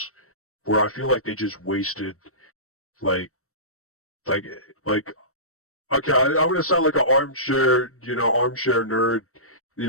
where I feel like they just wasted okay, I'm gonna sound like an armchair nerd,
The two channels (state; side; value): late; right; 0.63 ms